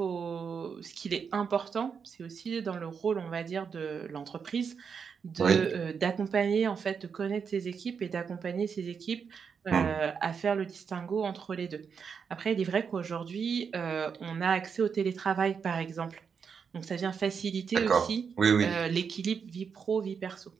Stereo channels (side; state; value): left; quieter; 6.4 dB